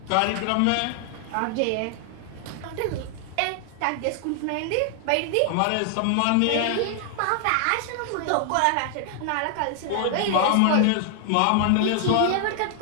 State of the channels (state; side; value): different; both; correlation 0.00